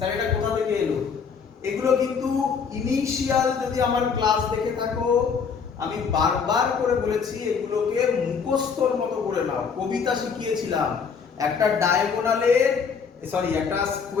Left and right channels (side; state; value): right; quieter; 6.0 dB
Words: এটা কোথা থেকে এলো। এগুলো কিন্তু ইনিশিয়াল যদি আমার ক্লাস দেখে থাকো, আমি বারবার করে বলেছি এগুলোকে মুখস্থর মতো করে নাও। কবিতা শিখিয়েছিলাম, একটা ডায়াগোনালের একটা